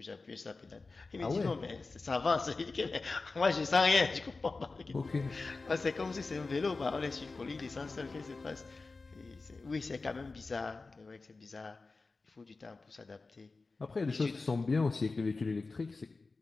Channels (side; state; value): right; quieter; 3.8 dB